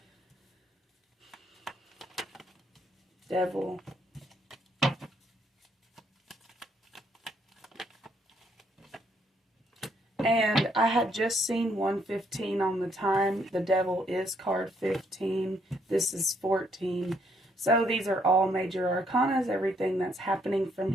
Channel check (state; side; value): normal; both; correlation 0.71